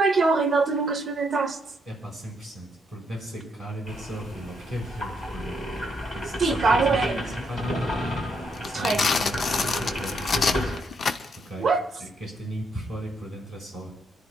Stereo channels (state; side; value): normal; both; correlation 0.75